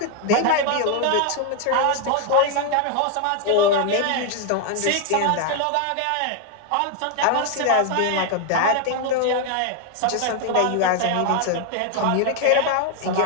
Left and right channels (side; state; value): both; different; correlation 0.00